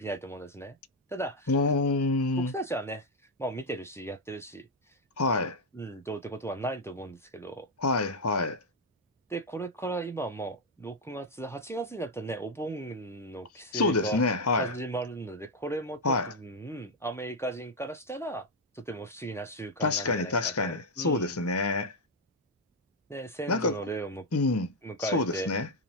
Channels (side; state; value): both; normal; correlation 0.02